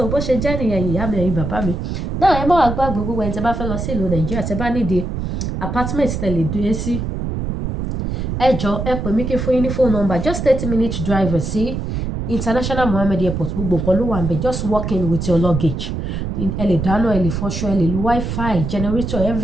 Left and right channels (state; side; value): noise; right; rumble, 3 dB below the sound